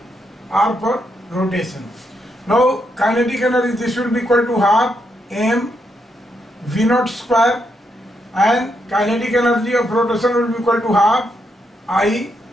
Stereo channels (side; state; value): both; normal; correlation 0.80